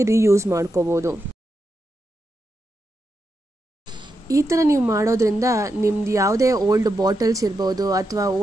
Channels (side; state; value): both; normal; correlation 0.86